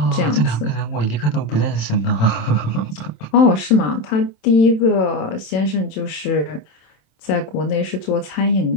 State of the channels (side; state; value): right; late; 27 ms